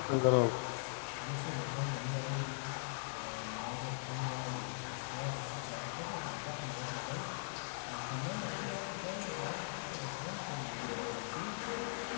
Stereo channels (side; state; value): right; silent; digital silence